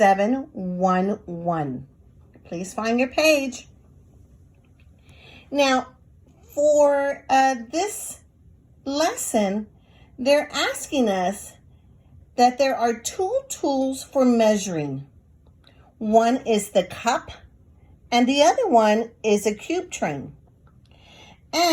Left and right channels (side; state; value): both; identical; correlation 1.00